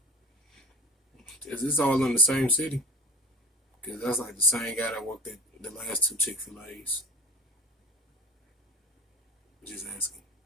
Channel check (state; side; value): normal; both; correlation 0.33